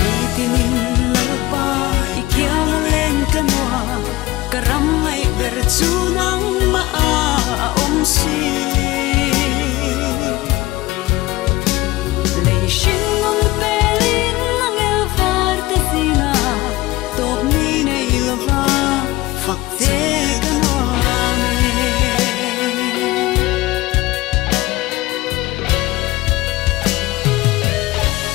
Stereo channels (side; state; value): right; quieter; 18.5 dB